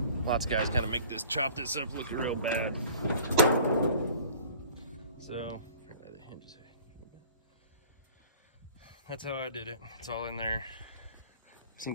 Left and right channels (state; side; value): inverted; both; correlation -0.48